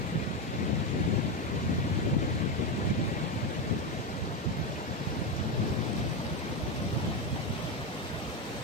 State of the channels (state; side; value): normal; both; correlation 0.11